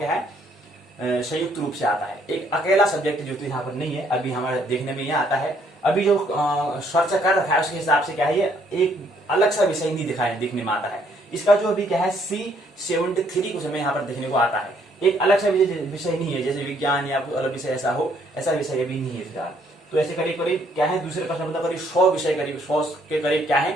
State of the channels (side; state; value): both; normal; correlation 0.67